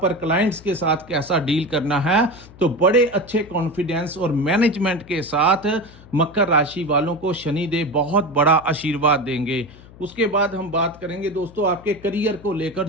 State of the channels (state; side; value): noise; left; hum, 21 dB below the sound